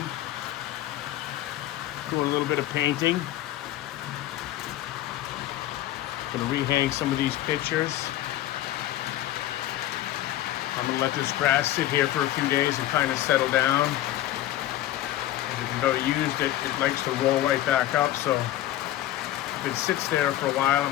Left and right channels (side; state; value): right; quieter; 14.0 dB